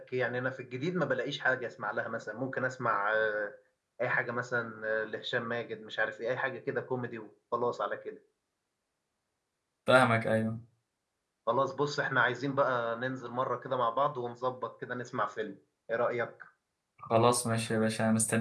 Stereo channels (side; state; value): both; identical; correlation 1.00